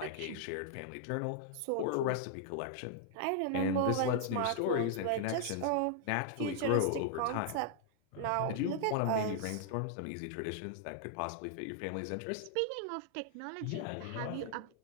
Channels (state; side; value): different; both; correlation -0.01